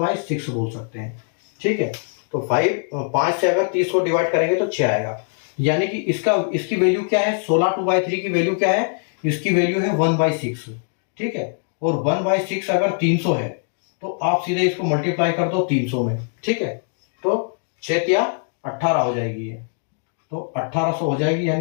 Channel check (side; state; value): right; silent; 57 dB below the other